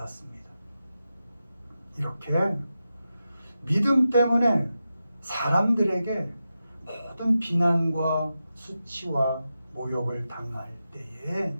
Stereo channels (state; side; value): inverted; both; correlation -0.90